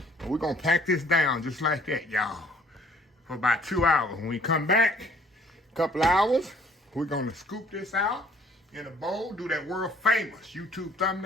And we're going to pack this down just like that, y'all, for about 2 hours. When we come back, a couple hours, we're going to scoop this out in a bowl, do that world famous YouTube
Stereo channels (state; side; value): normal; both; correlation 0.58